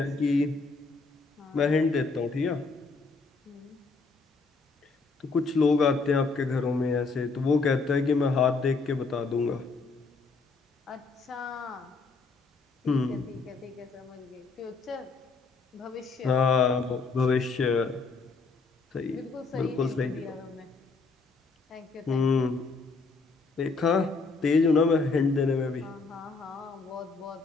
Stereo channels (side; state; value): right; quieter; 4.2 dB